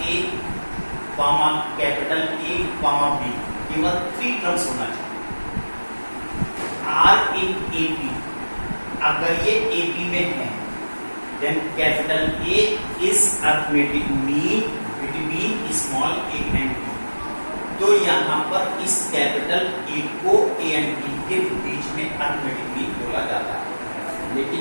a, comma capital A, comma B, केवल 3 terms होना चाहिए. R in AP, अगर ये AP में है, then capital A is arithmetic mean between small a and B. तो यहाँ पर इस कैपिटल A को A and B के बीच में arithmetic mean बोला जाता है, लेकिन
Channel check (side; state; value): both; inverted; correlation -1.00